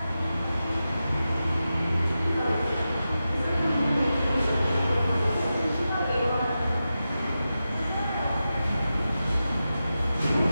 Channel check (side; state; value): both; inverted; correlation -0.91